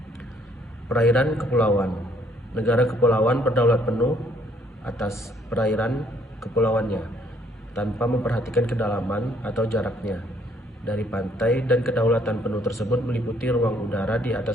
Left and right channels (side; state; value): both; normal; correlation 0.65